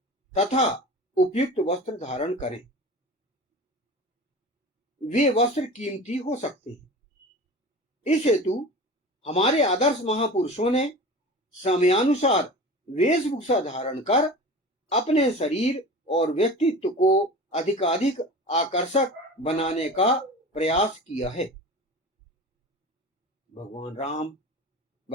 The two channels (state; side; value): normal; both; correlation 0.35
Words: तथा उपयुक्त वस्त्र धारण करें। वे वस्त्र कीमती हो सकते हैं। इस हेतु हमारे आदर्श महापुरुषों ने समयानुसार वेशभूषा धारण कर अपने शरीर और व्यक्तित्व को अधिकाधिक आकर्षक बनाने का प्रयास किया है। भगवान राम,